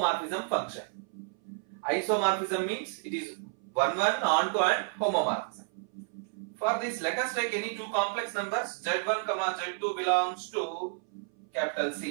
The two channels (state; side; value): silent; left; 57 dB below the other